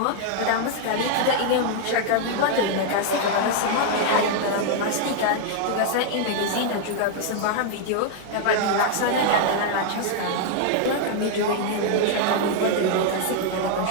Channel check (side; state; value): both; different; correlation 0.00